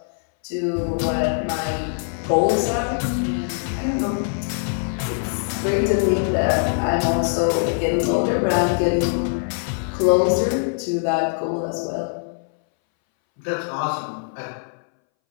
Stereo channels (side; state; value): right; silent; 62 dB below the other